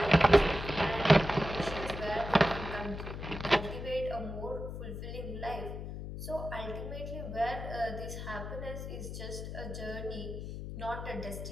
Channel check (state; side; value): noise; left; hum, 7 dB below the sound